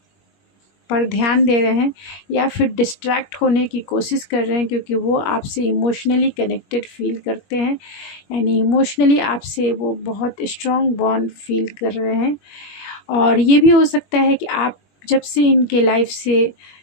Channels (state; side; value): late; right; 21 ms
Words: पर ध्यान दे रहे हैं या फिर डिस्ट्रैक्ट होने की कोशिश कर रहे हैं, क्योंकि वो आपसे इमोशनली कनेक्टेड फील करते हैं, यानी इमोशनली आपसे वो बहुत स्ट्रॉन्ग बॉन्ड फील कर रहे हैं। और ये भी हो सकता है कि आप जब से इनके लाइफ से